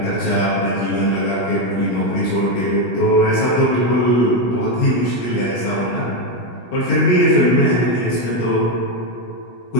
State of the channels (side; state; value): right; late; 16 ms